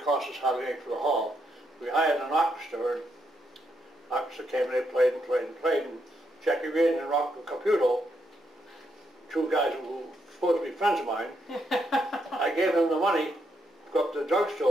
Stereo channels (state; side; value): normal; both; correlation 0.78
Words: cost us hardly anything for the hall. We hired an orchestra, and the orchestra came and they played and played and played, and Jackie Reardon and Rocco Caputo, two guys who were supposed to be friends of mine, I gave them the money to go up to the